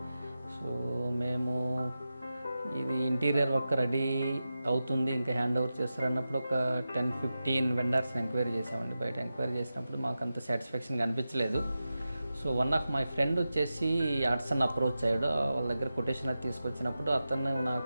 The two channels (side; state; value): both; inverted; correlation -0.93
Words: సో మేము ఇది ఇంటీరియర్ వర్క్ రెడీ అవుతుంది, ఇంకా హ్యాండ్ ఓవర్ చేస్తారన్నప్పుడు ఒక 10-15 వెండర్స్ని ఎంక్వైరీ చేసామండి. బయట ఎంక్వైరీ చేసినప్పుడు మాకు అంత సాటిస్ఫాక్షన్ అనిపించలేదు. So one of my friend వచ్చేసి ఆర్ట్సన్ అప్రోచ్ అయ్యాడు. వాళ్ళ దగ్గర కొటేషన్ అది తీసుకొచ్చినప్పుడు అతను